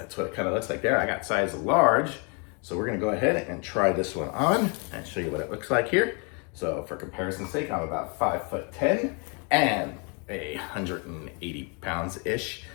what it kind of looks like there. I got size large. So we're gonna go ahead and try this one on and show you what it looks like here. So for comparison's sake, I'm about 5'10" and 180 pounds-ish.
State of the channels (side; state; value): right; quieter; 34.7 dB